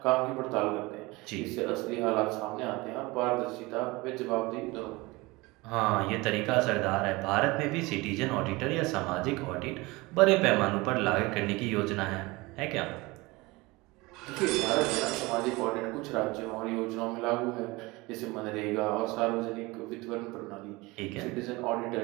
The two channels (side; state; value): left; quieter; 22.8 dB